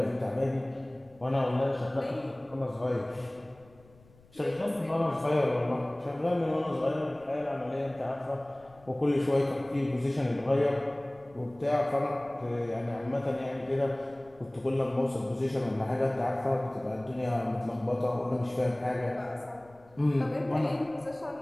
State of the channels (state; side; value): noise; left; rumble, 27 dB below the sound